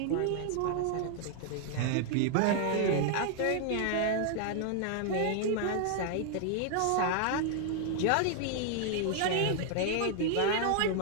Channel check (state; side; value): different; both; correlation 0.00